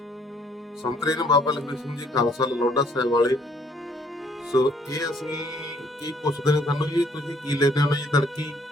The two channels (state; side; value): normal; both; correlation 0.64